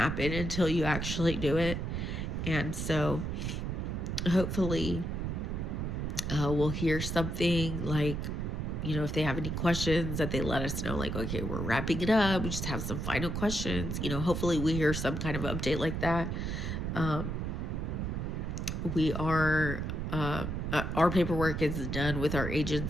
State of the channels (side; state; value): right; noise; rumble, 2 dB below the sound